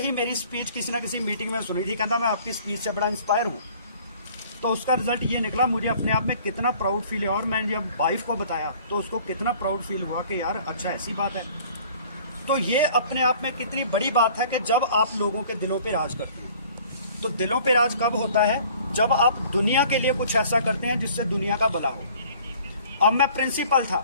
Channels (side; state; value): both; inverted; correlation -0.52